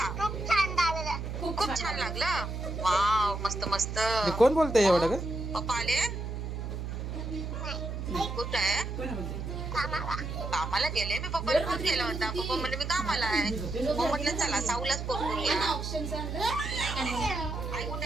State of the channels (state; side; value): noise; right; hum, 5 dB below the sound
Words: खूप छान लागलं. वाव मस्त मस्त. हे कोण बोलतंय एवढं ग? पप्पा आले? कुठं आहे? कामाला गेले. मी पप्पाला फोन केला होता. पप्पा म्हणले मी कामाला आहे. मग म्हटलं चला साऊलाच फोन करूया. आई